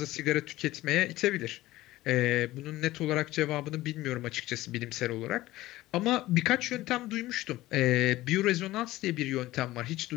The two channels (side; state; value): right; quieter; 17.0 dB